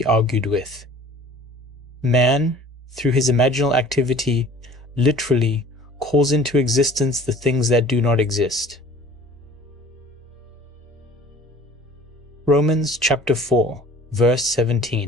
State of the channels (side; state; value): both; normal; correlation 0.48